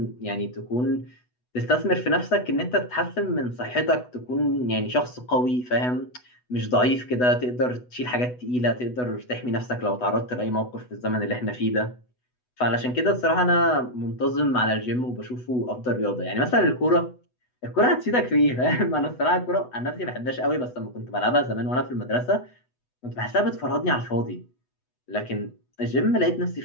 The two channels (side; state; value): right; late; 8.1 ms